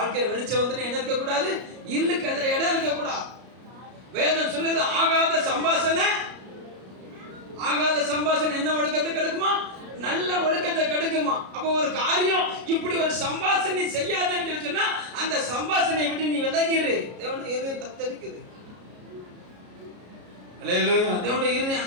வெளிச்சம் வந்துனா என்ன இருக்க கூடாது? இருளுக்கு இடம் இருக்க கூடாது. வேதம் சொல்லுது, ஆகாத சம்பாஷணை என்ன ஒழுக்கத்தை கெடுக்குமா? நல்ல ஒழுக்கத்தை கெடுக்குமா? அப்ப ஒரு காரியம் இப்படி ஒரு சம்பாஷணை செய்யாதன்னு சொன்னா அந்த சம்பாஷணையை விட்டு நீ விலகிரு. தேவனுடைய இருதயம் தத்தளிக்குது. அல்லேலூயா. தேவனுடைய இருதயம்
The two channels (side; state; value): left; late; 33 ms